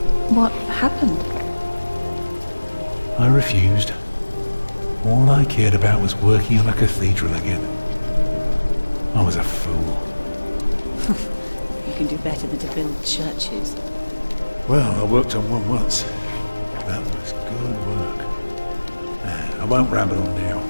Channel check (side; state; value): both; inverted; correlation -1.00